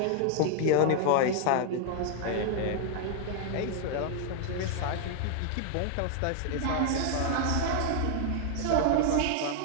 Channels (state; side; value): different; both; correlation 0.00